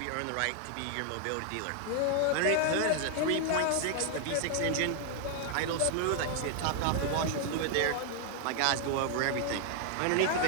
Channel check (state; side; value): different; both; correlation 0.00